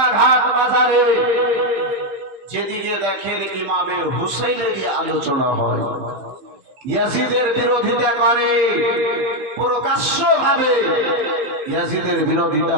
বাজারে যেদিকে দেখেন ইমামে হুসাইনেরই আলোচনা হয়, ইয়াজিদের বিরোধিতা করে, প্রকাশ্যভাবে ইয়াজিদের বিরোধিতা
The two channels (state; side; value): late; left; 15 ms